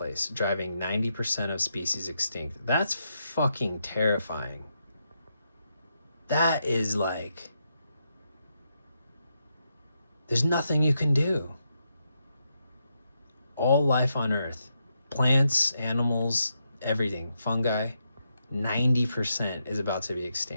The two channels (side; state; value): both; inverted; correlation -0.82